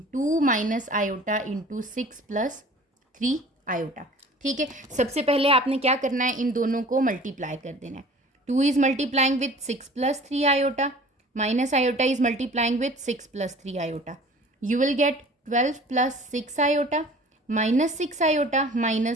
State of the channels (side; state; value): both; normal; correlation 0.46